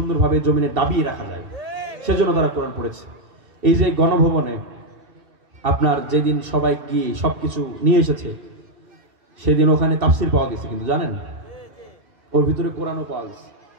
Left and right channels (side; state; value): left; late; 2.7 ms